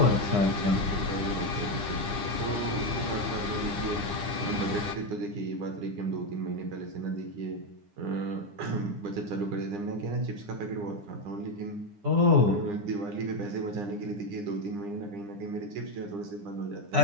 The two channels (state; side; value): late; left; 9.9 ms